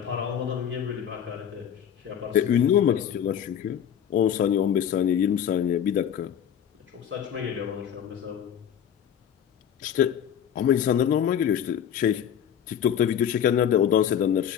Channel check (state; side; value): quieter; right; 9.2 dB